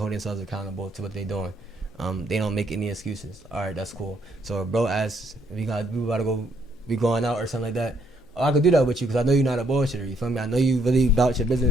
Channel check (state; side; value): normal; both; correlation 0.71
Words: themselves accountable to what they're doing. They don't make any excuses. All right, that's cool. So bro asks if we about to go, we going out or something like that. Oh, I could do that with you because I know you're not a bullshitter. You feel me? I know you really about your